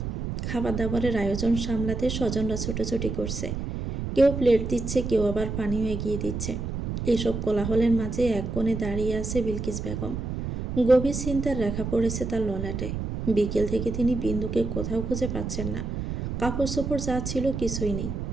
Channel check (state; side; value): noise; right; rumble, 4 dB below the sound